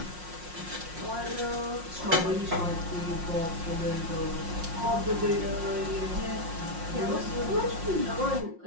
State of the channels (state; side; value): late; left; 5.6 ms